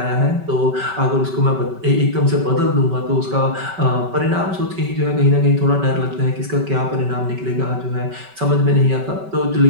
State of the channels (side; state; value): left; late; 5.2 ms